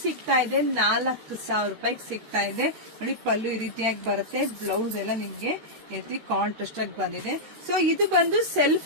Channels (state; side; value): late; left; 13 ms